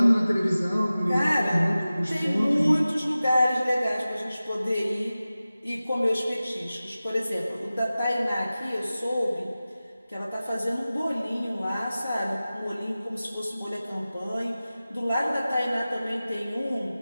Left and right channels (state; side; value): inverted; both; correlation -0.96